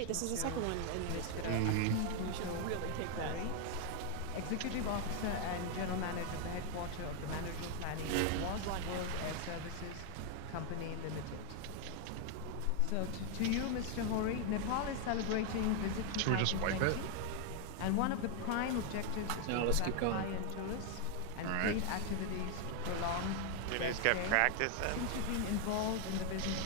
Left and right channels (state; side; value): different; both; correlation 0.00